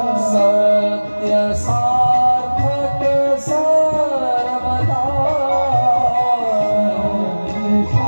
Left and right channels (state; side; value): inverted; both; correlation -1.00